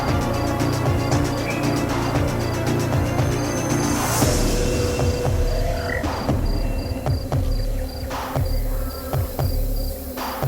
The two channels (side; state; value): both; identical; correlation 1.00